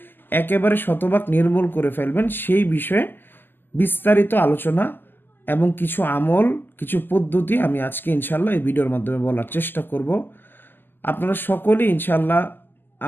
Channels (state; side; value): late; right; 0.093 ms